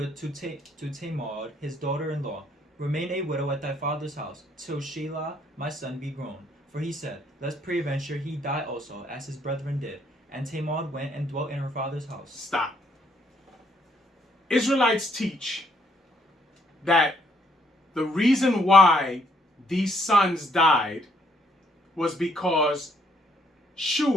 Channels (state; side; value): normal; both; correlation 0.69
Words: to Tamar, his daughter-in-law, remain a widow at thy father's house, till Shelah my son be grown. For he said, lest peradventure he die also, as his brethren did. And Tamar went and dwelt in her father's house. Stop. Israelites teach that the reason why these sons died was because